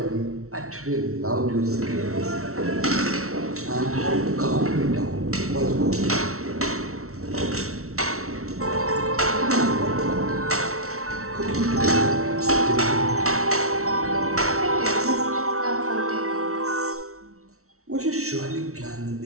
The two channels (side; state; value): left; late; 0.63 ms